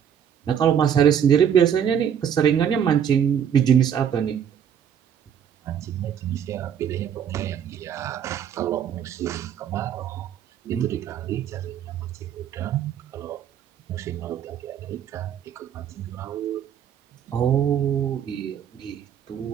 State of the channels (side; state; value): left; quieter; 8.6 dB